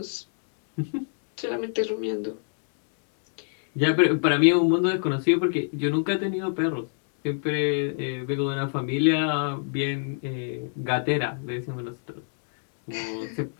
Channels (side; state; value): right; silent; digital silence